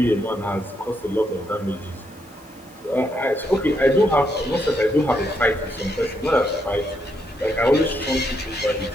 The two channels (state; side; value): normal; both; correlation 0.78